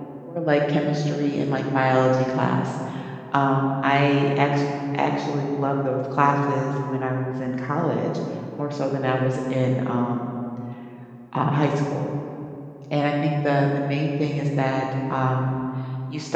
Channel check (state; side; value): identical; both; correlation 1.00